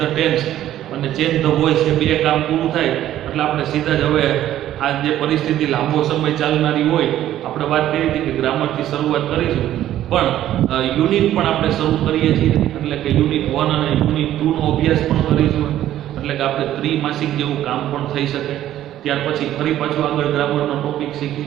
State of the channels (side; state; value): left; quieter; 12.6 dB